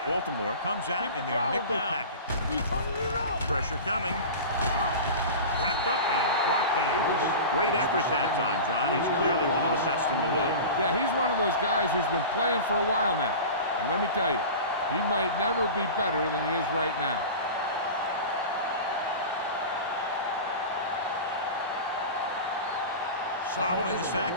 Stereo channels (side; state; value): both; inverted; correlation -0.32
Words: Baltimore comes out in their nickel package. He's turning it up. Pressure coming. Wrapped up and brought down. Great effort that time, John. He's clearly one of the best in the league. Yeah, he's one of those guys who's been playing for a while now. And let me tell you, he might never be better than he is right now. Following the sack,